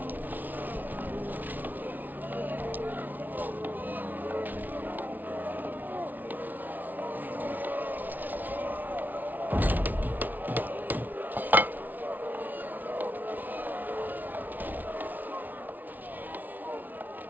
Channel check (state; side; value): late; left; 0.082 ms